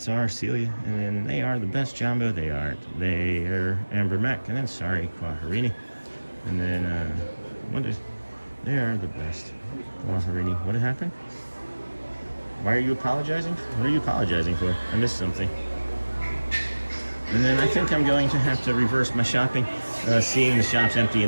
our Celia. And then they are the best Jumbo. They aren't. They are Amber Mac. And then sorry, Quaharini. And then they are the best. Quaharini. What happened? Why are you apologizing? What are you apologizing for? I missed something. And then I think I'm going to have to reverse my shopping. Seeing the shops empty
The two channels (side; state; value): both; inverted; correlation -1.00